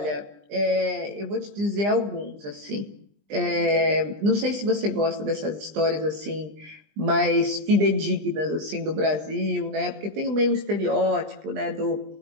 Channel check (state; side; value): late; left; 20 ms